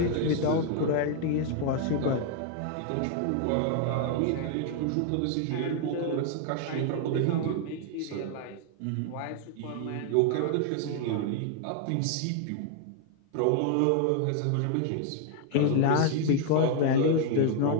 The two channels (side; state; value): both; different; correlation 0.00